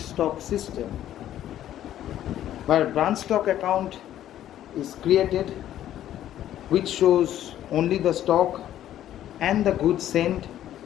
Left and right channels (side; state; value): right; quieter; 12.0 dB